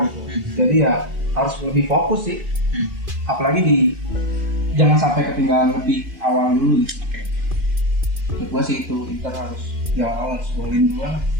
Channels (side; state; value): left; late; 2.5 ms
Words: gitu. Jadi ya harus lebih fokus sih. Apalagi jangan sampai ketinggalan lebih awal dulu gitu. Menurut gue sih itu Inter harus di awal harus golin dulu.